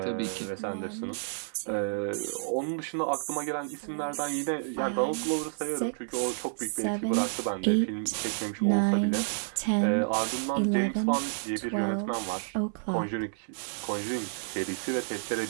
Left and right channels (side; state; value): left; silent; 58 dB below the other